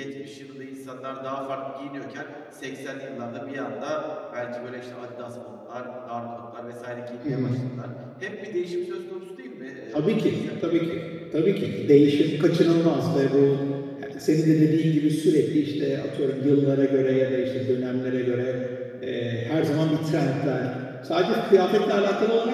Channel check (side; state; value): both; identical; correlation 1.00